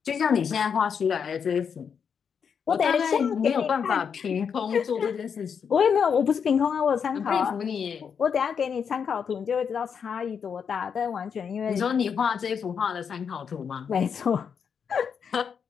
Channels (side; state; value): right; quieter; 6.9 dB